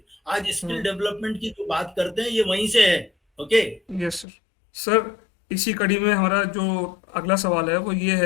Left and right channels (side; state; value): right; drops out; at 4.2 s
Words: आज स्किल डेवलपमेंट की जो बात करते हैं ये वहीं से है। ओके। Yes sir. सर, इसी कड़ी में हमारा जो अगला सवाल है वो ये